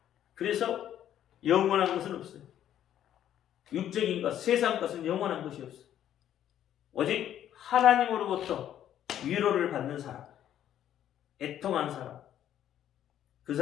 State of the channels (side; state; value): right; quieter; 10.9 dB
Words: 그래서 영원한 것은 없어요. 육적인 것, 세상 것은 영원한 것이 없어요. 오직 하나님으로부터 위로를 받는 사람, 애통한 사람, 그